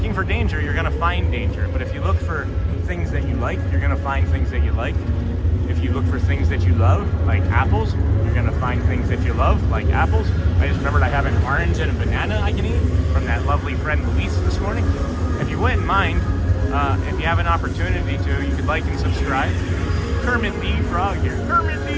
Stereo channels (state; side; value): identical; both; correlation 1.00